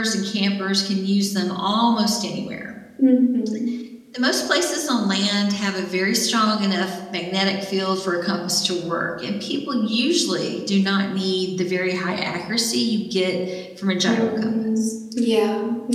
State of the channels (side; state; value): both; identical; correlation 1.00